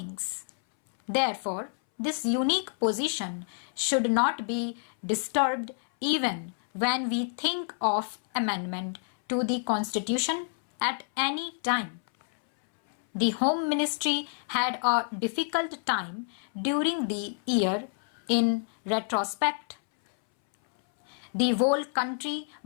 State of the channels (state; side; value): silent; right; 59 dB below the other